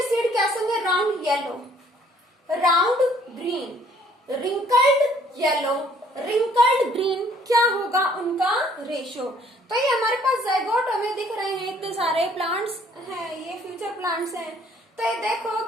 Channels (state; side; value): normal; both; correlation 0.61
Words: सीड कैसे होंगे? Round yellow, round green, wrinkled yellow, wrinkled green. क्या होगा उनका रेशियो? तो ये हमारे पास जाइगोट हमें दिख रहे हैं, इतने सारे प्लांट्स हैं, ये फ्यूचर प्लांट्स हैं। तो ये देखो